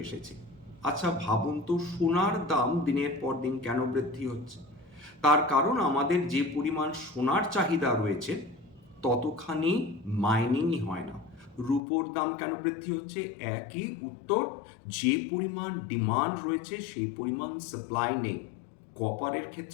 এসেছে। আচ্ছা ভাবুন তো, সোনার দাম দিনের পর দিন কেন বৃদ্ধি হচ্ছে? তার কারণ আমাদের যে পরিমাণ সোনার চাহিদা রয়েছে ততখানি মাইনিংই হয় না। রূপোর দাম কেন বৃদ্ধি হচ্ছে? একই উত্তর, যে পরিমাণ ডিমান্ড রয়েছে সেই পরিমাণ সাপ্লাই নেই। কপারের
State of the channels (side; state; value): right; drops out; at 11.8 s